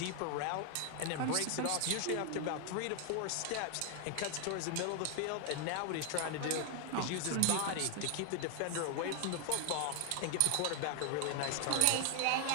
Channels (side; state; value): both; different; correlation 0.00